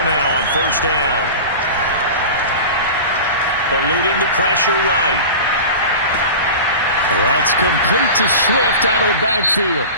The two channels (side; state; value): both; inverted; correlation -0.32